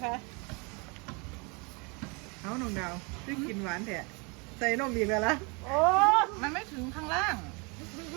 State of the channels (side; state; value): left; quieter; 30.8 dB